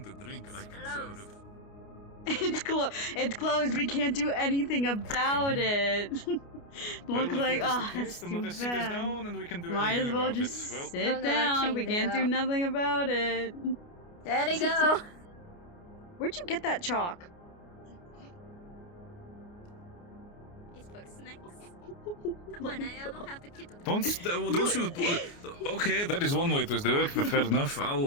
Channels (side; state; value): right; late; 29 ms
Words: a drink, I can serve. It's closed. We can't do anything about it. Well, Look if like, that is the oh, case, it's then too we'll just sit us bad. down and we can do Might anything as well about just it. Well, sit I'm gonna down. change We it can't do up. nothing about it. There you go. Where'd you get that chalk? It's for snacks. Come on, I don't have the key to the Don't you? Okay, that is one way to do it, but fair enough.